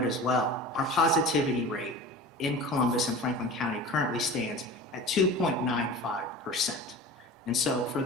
as well, our positivity rate in Columbus and Franklin County currently stands at 2.95%. And so for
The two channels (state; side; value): normal; both; correlation 0.35